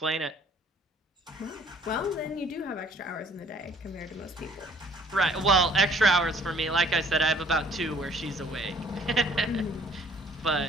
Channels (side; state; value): both; normal; correlation 0.57